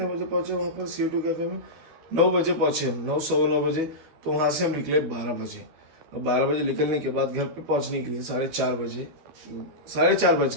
बजे पहुंचे वहाँ पर CO2 कैफ़े में? 9 बजे पहुंचे हम, 9, 9:15 बजे। तो वहाँ से हम निकले 12 बजे। और 12 बजे निकलने के बाद घर पे पहुंचने के लिए 4:30 बजे, 4:30 बज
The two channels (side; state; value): left; late; 13 ms